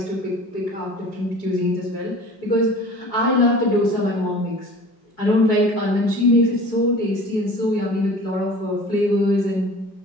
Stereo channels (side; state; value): right; late; 4.8 ms